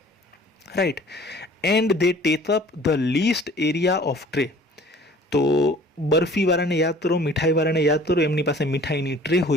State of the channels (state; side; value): normal; both; correlation 0.50